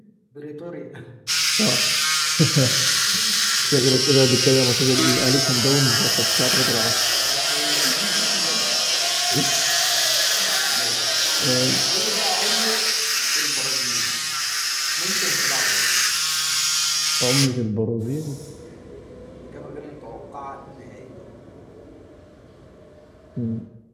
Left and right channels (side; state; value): both; identical; correlation 1.00